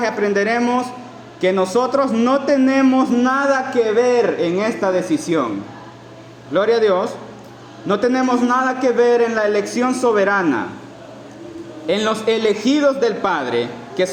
aprenderemos que nosotros no tenemos nada que ver en esta decisión. Gloria a Dios. No tenemos nada que ver en la elección soberana, en los elegidos del Padre, que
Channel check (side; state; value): both; identical; correlation 1.00